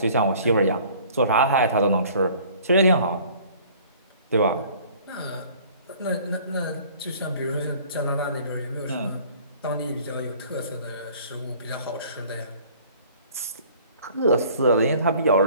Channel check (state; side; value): inverted; both; correlation -0.52